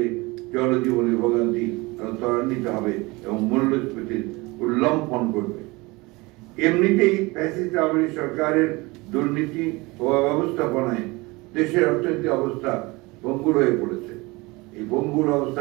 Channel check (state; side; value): quieter; left; 23.6 dB